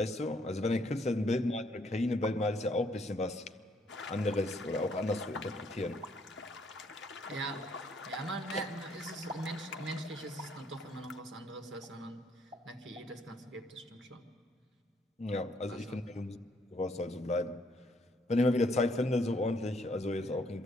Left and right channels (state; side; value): normal; both; correlation 0.68